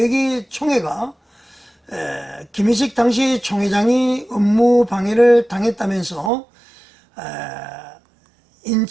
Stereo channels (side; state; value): left; drops out; at 6.3 s